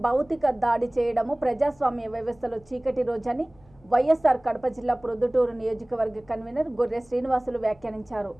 భౌతిక దాడి చేయడము ప్రజాస్వామ్య వ్యవస్థలో చీకటి రోజని వైఎస్ఆర్ కడప జిల్లా ప్రొద్దుటూరు నియోజకవర్గ కన్వీనర్ గొర్రె శ్రీనివాసులు వ్యాఖ్యానించారు.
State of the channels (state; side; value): noise; left; hum, 28 dB below the sound